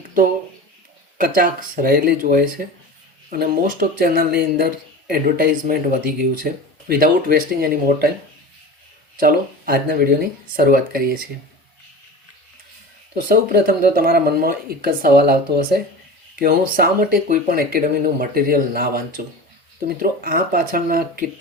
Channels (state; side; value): normal; both; correlation 0.32